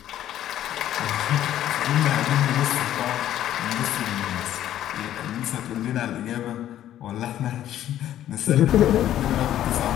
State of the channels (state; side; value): quieter; right; 12.0 dB